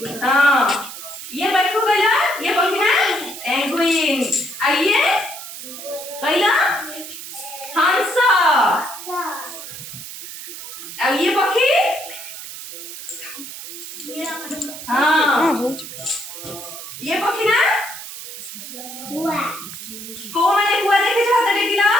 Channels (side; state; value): right; noise; hiss, 11 dB below the sound